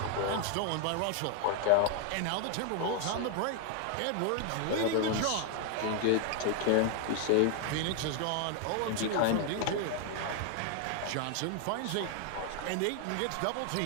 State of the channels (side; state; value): both; different; correlation 0.00